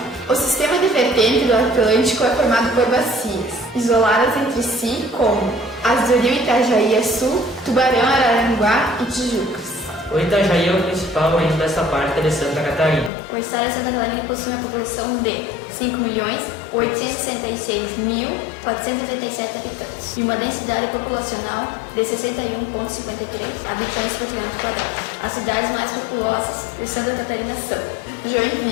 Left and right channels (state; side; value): drops out; right; at 13.1 s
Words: O sistema de vertente do Atlântico é formado por bacias, isoladas entre si, como as do rio Itajaí a sul, Tubarão, Araranguá e Tijucas. O Itajaí é o principal rio dessa parte de Santa Catarina. O estado de Santa Catarina possui uma população de 5.866.487 habitantes e uma densidade populacional de 61,53 habitantes por quilômetro quadrado. As cidades mais populosas de Santa Catarina são